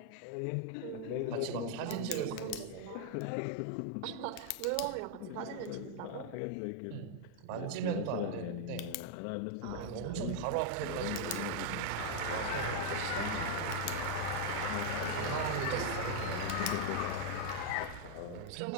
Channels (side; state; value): both; different; correlation 0.00